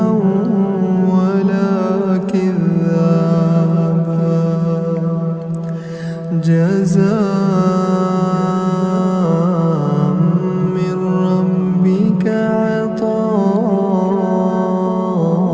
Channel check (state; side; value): identical; both; correlation 1.00